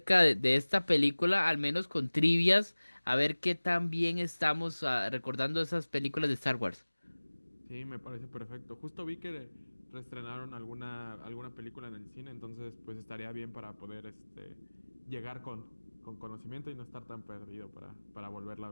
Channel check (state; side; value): inverted; both; correlation -1.00